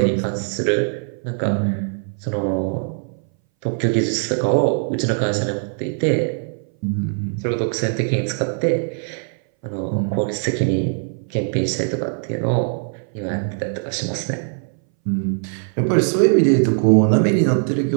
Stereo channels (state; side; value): silent; left; 61 dB below the other